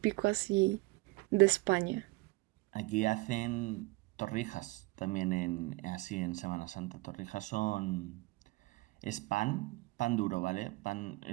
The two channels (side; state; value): left; quieter; 22.4 dB